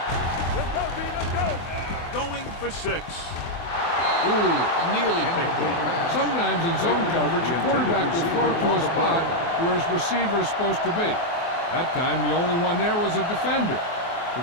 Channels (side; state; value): right; late; 24 ms